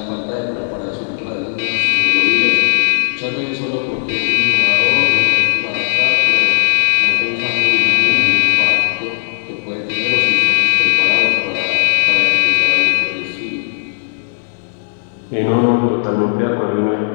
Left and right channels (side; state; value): right; silent; digital silence